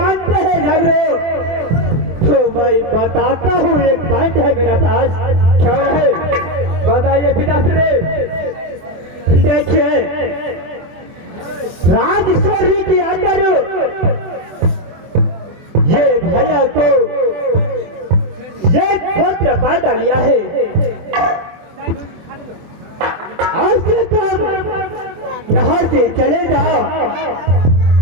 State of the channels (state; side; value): late; left; 24 ms